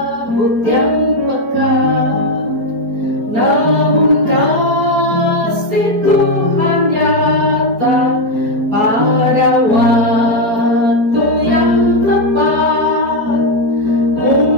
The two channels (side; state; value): left; late; 4.7 ms